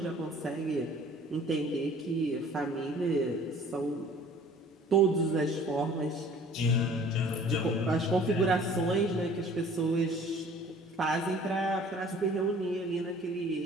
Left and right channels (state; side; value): normal; both; correlation 0.51